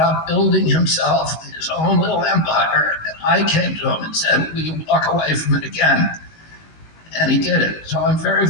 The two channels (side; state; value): right; late; 19 ms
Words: building himself his own little empire. And I came to him and said, will you walk away from it again? And he did it. So I'm very,